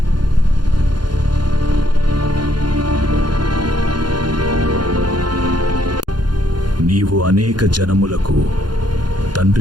నీవు అనేక జనములకు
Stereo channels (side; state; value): left; late; 0.71 ms